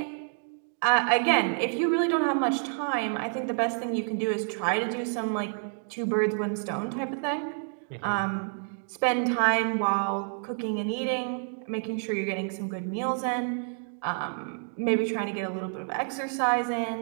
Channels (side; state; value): left; silent; 59 dB below the other